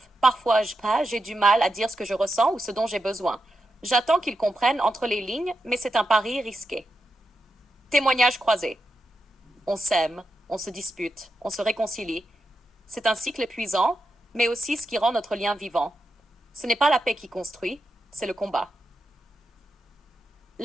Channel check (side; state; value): both; normal; correlation 0.87